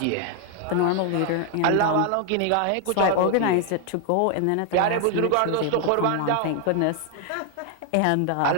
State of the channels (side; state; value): both; different; correlation 0.00